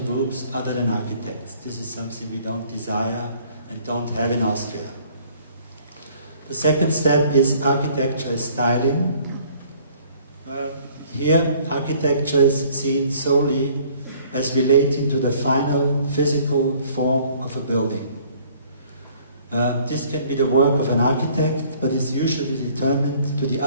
groups other than architects. This is something we don't desire and don't have in Austria. The second step is architecture as styling. Here, architecture is seen solely as relating to the final physical form of a building. This can be the work of an architect, but is usually determined to the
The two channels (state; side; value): inverted; both; correlation -0.57